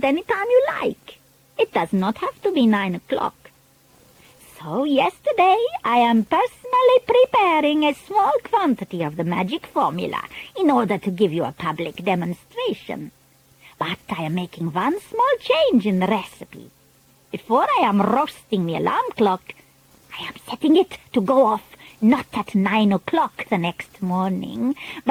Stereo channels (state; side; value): identical; both; correlation 1.00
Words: any time you like. It does not have to be 9 o'clock. So yesterday I am personally preparing a small quantity of the magic formula in order to give you a public demonstration. But I am making one small change in the recipe. Before I am roasting the alarm clock, I am setting it to go off not at 9 o'clock the next morning,